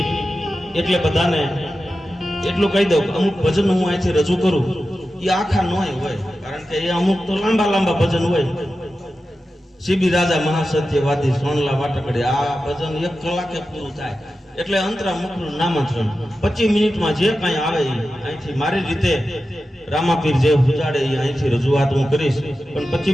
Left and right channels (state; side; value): normal; both; correlation 0.92